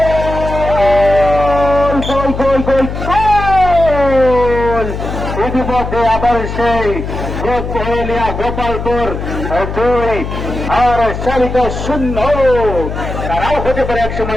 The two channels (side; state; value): left; noise; hum, 6 dB below the sound